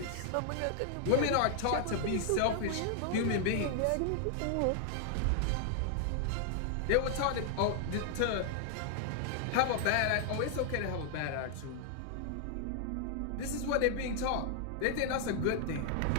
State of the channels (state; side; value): different; both; correlation 0.00